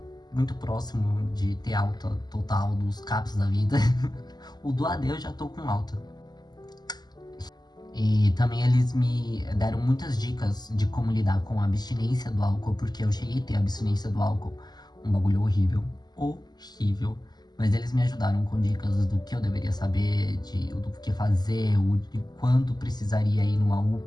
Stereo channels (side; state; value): right; late; 0.20 ms